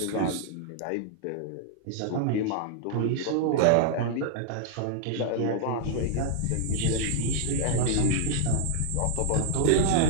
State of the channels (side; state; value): both; different; correlation 0.00